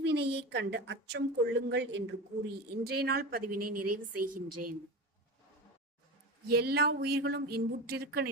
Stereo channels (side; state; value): both; normal; correlation 0.26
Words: கண்டு அச்சம் கொள்ளுங்கள் என்று கூறி இன்றைய நாள் பதிவினை நிறைவு செய்கின்றேன். எல்லா உயிர்களும் இன்புற்றிருக்க